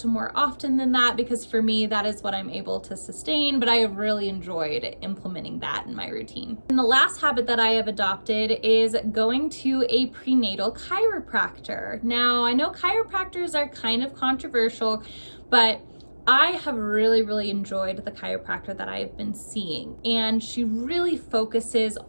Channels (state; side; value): inverted; both; correlation -1.00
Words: more often than that, because for me, that is what I'm able to sustain, but I have really enjoyed implementing that in my routine. And the last habit that I have adopted is going to a prenatal chiropractor. Now, I know chiropractors are kind of controversial, but I have really enjoyed the chiropractor that I have been seeing, and she really focuses